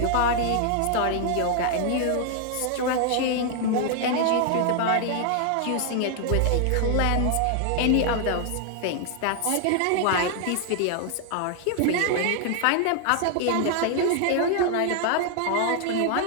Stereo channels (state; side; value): different; both; correlation 0.00